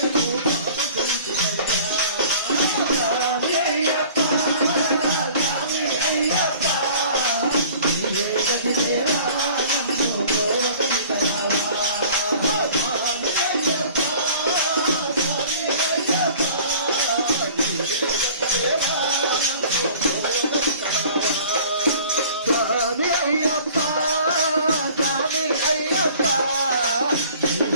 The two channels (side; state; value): both; inverted; correlation -0.48